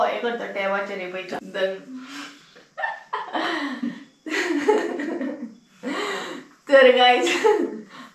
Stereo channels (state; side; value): identical; both; correlation 1.00